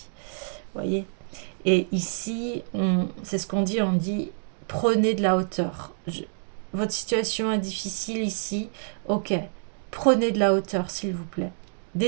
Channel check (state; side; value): silent; left; digital silence